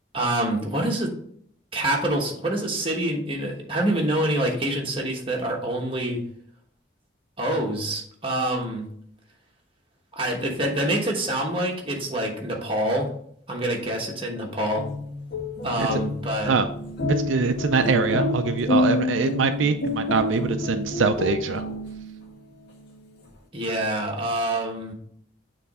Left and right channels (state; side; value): normal; both; correlation 0.28